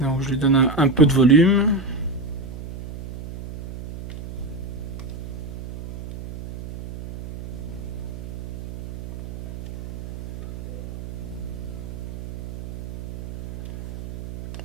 je lui donne un peu de volume.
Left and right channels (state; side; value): noise; right; hum, 11 dB below the sound